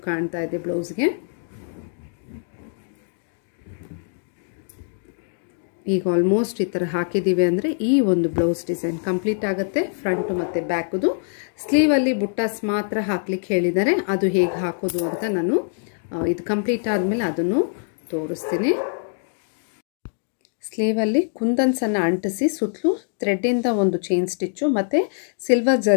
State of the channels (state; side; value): silent; right; digital silence